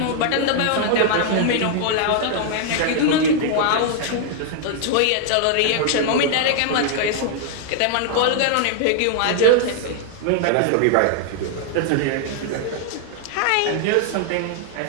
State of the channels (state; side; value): different; both; correlation 0.00